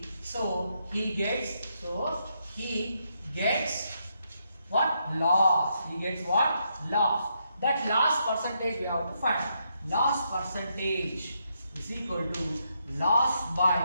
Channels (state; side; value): inverted; both; correlation -0.79